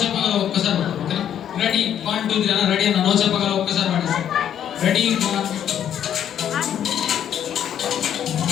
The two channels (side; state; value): right; quieter; 9.8 dB